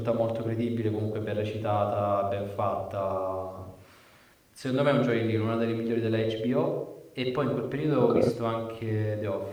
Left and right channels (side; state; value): both; identical; correlation 1.00